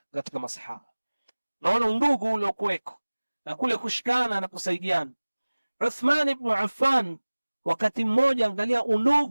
katika masahaba. Naona undugu ule ukweko na kule kushikana na kusaidiana. Uthman ibn Affan wakati mmoja, angalia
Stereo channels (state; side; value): inverted; both; correlation -1.00